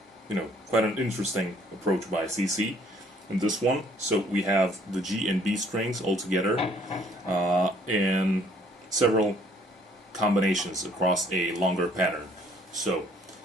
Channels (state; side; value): normal; both; correlation 0.62